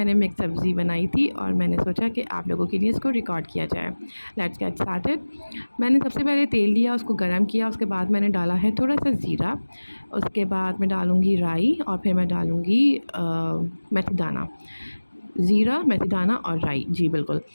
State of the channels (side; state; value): both; inverted; correlation -1.00